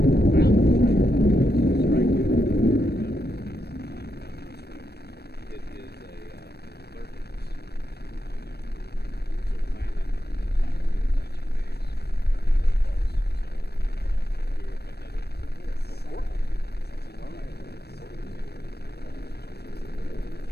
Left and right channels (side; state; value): right; late; 0.47 ms